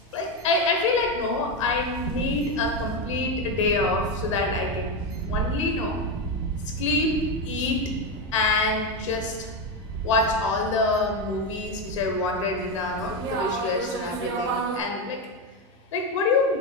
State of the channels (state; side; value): normal; both; correlation 0.11